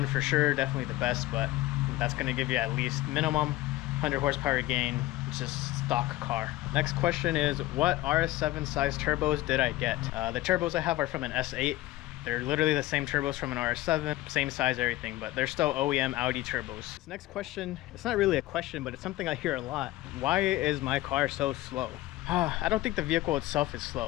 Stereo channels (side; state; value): right; quieter; 16.9 dB